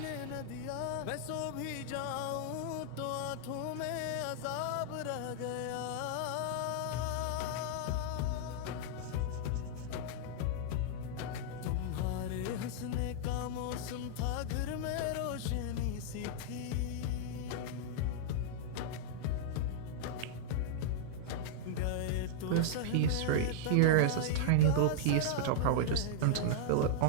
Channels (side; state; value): both; different; correlation -0.01